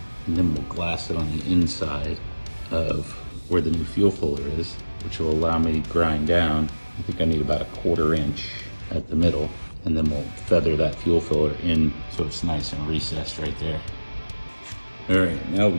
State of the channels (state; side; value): inverted; both; correlation -1.00